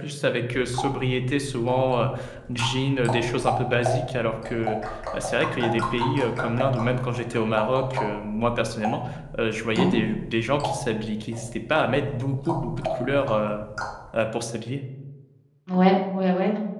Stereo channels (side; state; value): both; identical; correlation 1.00